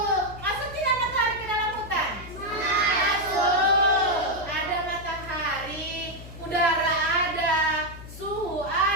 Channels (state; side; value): noise; left; hum, 14 dB below the sound